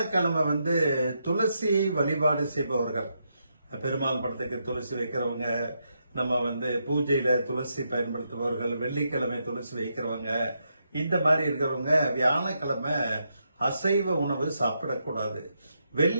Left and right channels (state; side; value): inverted; both; correlation -0.81